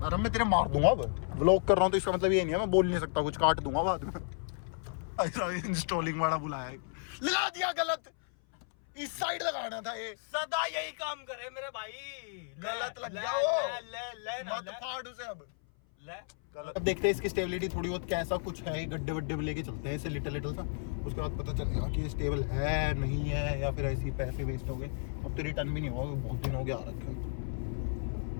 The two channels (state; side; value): silent; right; 56 dB below the other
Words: अरे मैं तेरे मार दूंगा, वो व्लॉग कर रहा हूँ तो इसका मतलब ये नहीं है मैं बोल नहीं सकता कुछ, काट दूंगा बाद में। ऐसा इंस्टॉलिंग वाला बुलाया है, लगा दिया गलत, इस साइड लगाना था ये। सदा यही काम करे मेरे भाई, गलत लग गया वो, मत फाड़ उसे अब। अब देखते हैं इसकी स्टेबिलिटी थोड़ी बहुत कैसा कुछ है, गड्ढे वड्ढे में लेके चलते हैं इसे लिटिल सा, उसके बाद पता चलेगा कि ये स्टेबल है नहीं है, या फिर ऐसे ही पैसे वेस्ट हो गए। अब तो रिटर्न भी नहीं होगा, बहुत दिन हो गया आ रखा है,